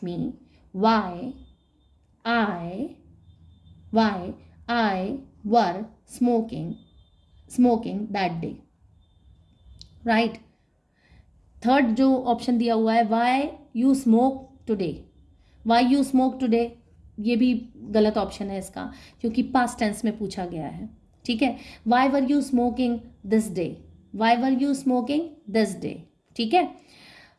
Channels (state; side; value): identical; both; correlation 1.00